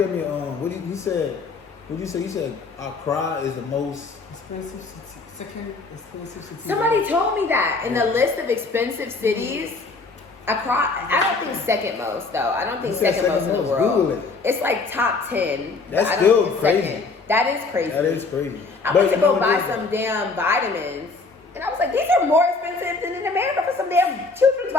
me, he said, what'd you say? He said Accra is the most Expensive city. Second expensive city. Somebody told me that in the list of expensive cities, Accra, I don't think second most though. I don't think You said second most in the most. world. Google it. It's like top 10. but That's I don't still think it's crazy. second. That is crazy. That is crazy. I But went to you know go what buy it is? some damn vitamins, and I was like, these are more expensive than in America for some damn children's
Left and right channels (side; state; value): right; quieter; 4.0 dB